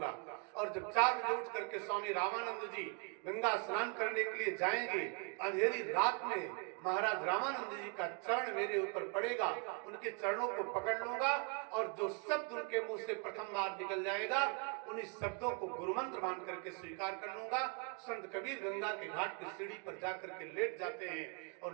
और जब 4 बजे उठ करके स्वामी रामानंद जी गंगा स्नान करने के लिए जाएंगे, अंधेरी रात में महाराज रामानंद जी का चरण मेरे ऊपर पड़ेगा, उनके चरणों को पकड़ लूंगा और जो शब्द उनके मुंह से प्रथम बार निकल जाएगा उन्हीं शब्दों को गुरुमंत्र मान करके स्वीकार कर लूंगा। संत कबीर गंगा के घाट की सीढ़ी पर जाकर के लेट जाते हैं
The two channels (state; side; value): quieter; left; 35.9 dB